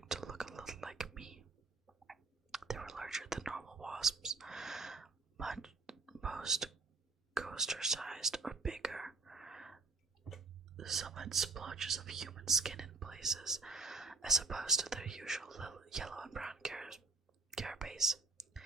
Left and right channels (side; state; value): left; quieter; 3.6 dB